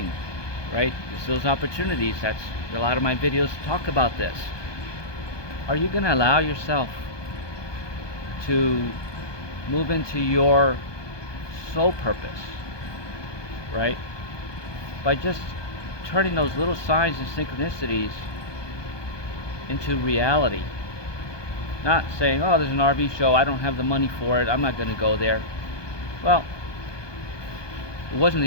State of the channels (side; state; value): right; late; 1.2 ms